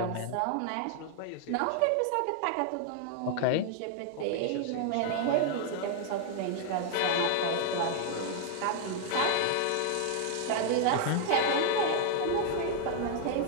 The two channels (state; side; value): different; both; correlation 0.00